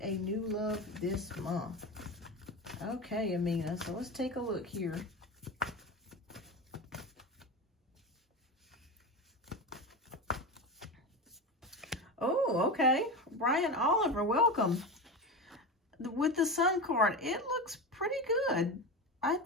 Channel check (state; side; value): normal; both; correlation 0.22